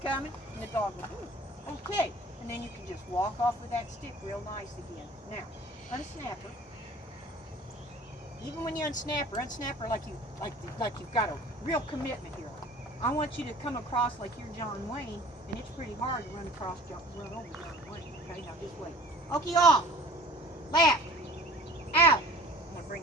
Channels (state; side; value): normal; both; correlation 0.47